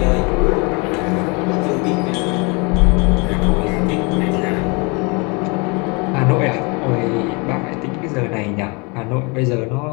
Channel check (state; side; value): quieter; right; 29.9 dB